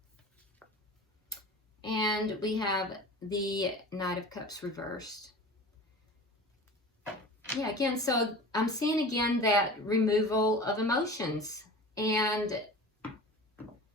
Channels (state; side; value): normal; both; correlation 0.37